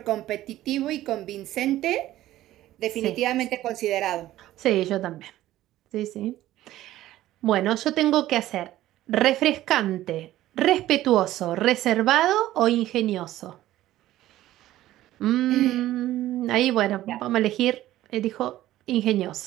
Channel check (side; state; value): left; quieter; 14.6 dB